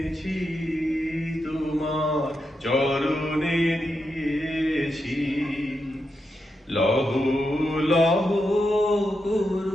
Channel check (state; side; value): normal; both; correlation 0.86